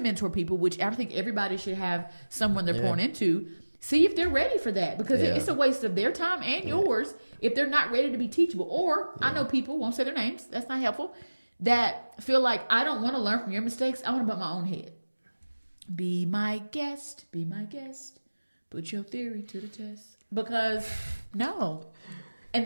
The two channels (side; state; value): both; inverted; correlation -1.00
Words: people, which I think everybody should have someone they're pouring into, see if they're ready for that, because it's a waste of their time and yours if they're not ready to be teachable. Or I know people, won't say their names, that's not helpful, that feel like I don't want to learn from your mistakes. I want to butt my own head. Be my guest. Be my guest. Put your theory to the test. Because no.